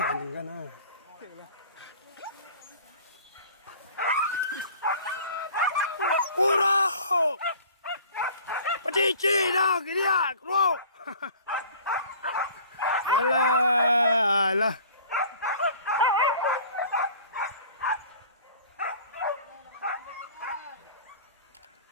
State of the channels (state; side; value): inverted; both; correlation -0.47